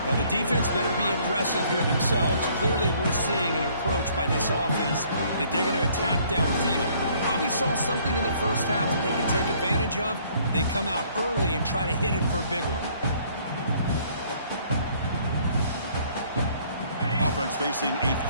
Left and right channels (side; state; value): both; inverted; correlation -0.61